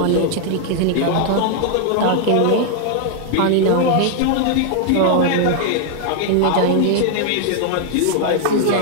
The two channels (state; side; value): different; both; correlation 0.00